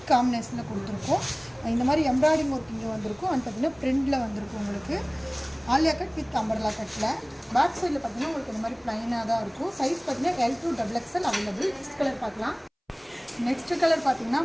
காம்பினேஷனில் கொடுத்துருக்கோம். இந்த மாதிரி எம்ப்ராய்டிங் ஒர்க் இங்கே வந்திருக்கும். அண்ட் பார்த்தீங்கன்னா பிரிண்டில் வந்திருக்கும். உங்களுக்கு ஆலியா கட் வித் அம்பர்லா கட்டில் பேக் சைடில் பார்த்தீங்கன்னா உங்களுக்கு இந்த மாதிரி ப்ளைனாக தான் இருக்கும். சைஸ் பார்த்தீங்கன்னா L2 XXL available. Next colour பார்க்கலாம். நெக்ஸ்ட் கலர் பார்த்தீங்கன்னா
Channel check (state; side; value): identical; both; correlation 1.00